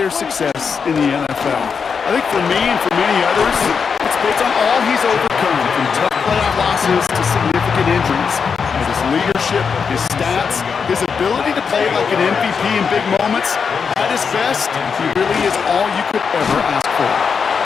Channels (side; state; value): right; quieter; 6.0 dB